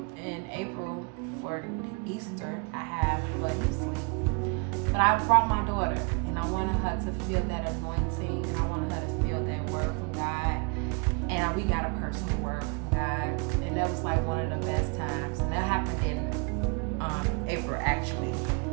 in April for Easter, I have, but he's asleep. But I brought my daughter and I wanted her to feel that anointing and I wanted her to feel that word from God. And we got a personal word from God, and that was like one of the best times. And that happened in April, actually.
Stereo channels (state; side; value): quieter; left; 33.5 dB